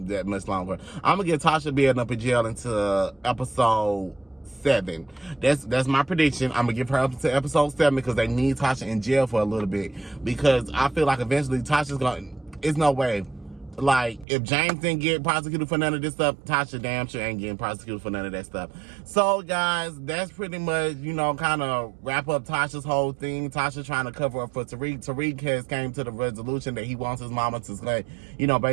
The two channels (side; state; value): left; drops out; at 14.2 s